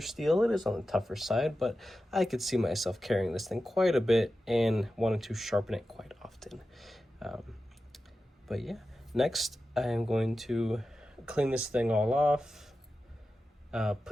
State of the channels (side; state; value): both; normal; correlation 0.93